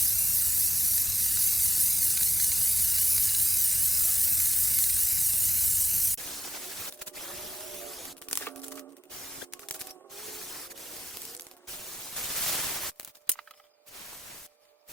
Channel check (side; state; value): both; normal; correlation 0.94